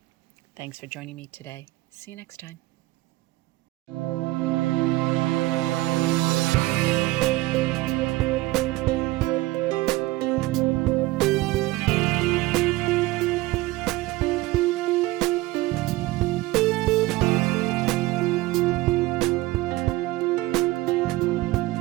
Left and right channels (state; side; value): quieter; left; 19.1 dB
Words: Thanks for joining me today. See you next time.